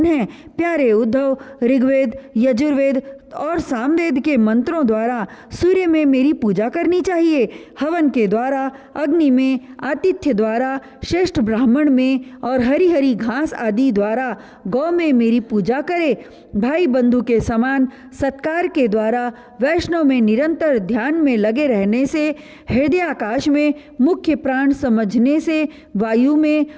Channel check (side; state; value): both; identical; correlation 1.00